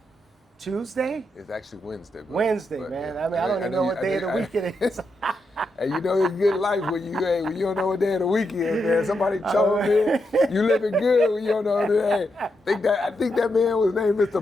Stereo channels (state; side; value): normal; both; correlation 0.83